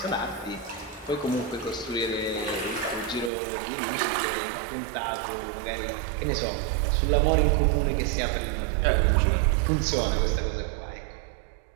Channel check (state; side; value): drops out; left; at 3.3 s